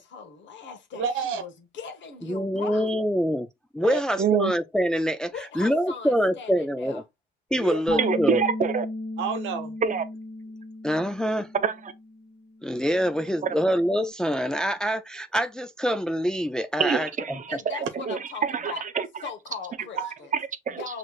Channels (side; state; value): both; normal; correlation 0.68